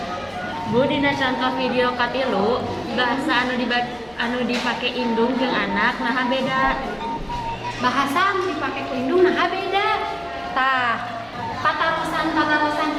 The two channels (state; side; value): noise; left; hum, 28 dB below the sound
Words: Bu, dina contoh video katilu bahasa anu dipake indung jeung anak nah beda. Bahasa anu dipake ku indung nah beda. Tah, patarosan